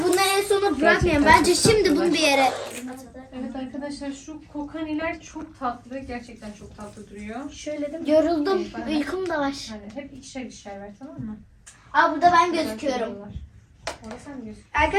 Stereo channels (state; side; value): identical; both; correlation 1.00